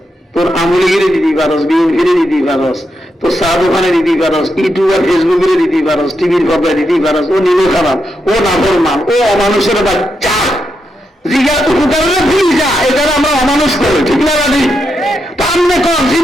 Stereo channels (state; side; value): normal; both; correlation 0.84